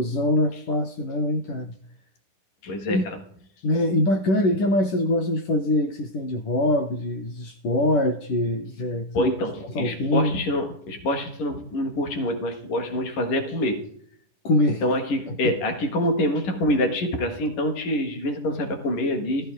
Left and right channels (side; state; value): right; late; 11 ms